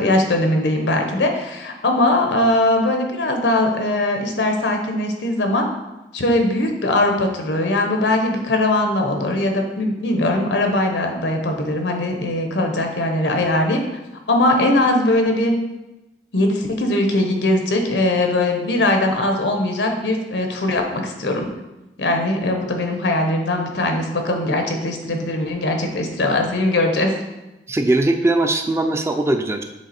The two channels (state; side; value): normal; both; correlation 0.31